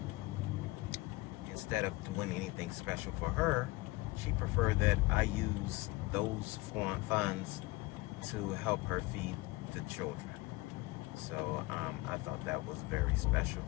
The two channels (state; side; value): quieter; right; 21.7 dB